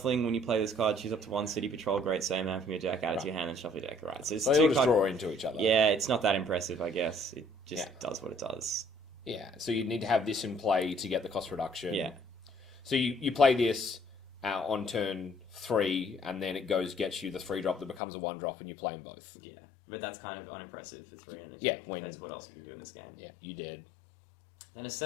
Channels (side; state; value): right; drops out; at 18.0 s